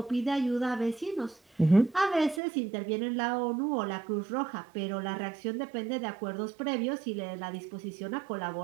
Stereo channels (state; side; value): drops out; left; at 2.4 s